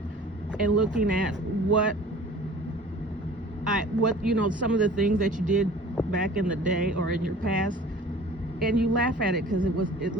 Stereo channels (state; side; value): normal; both; correlation 0.45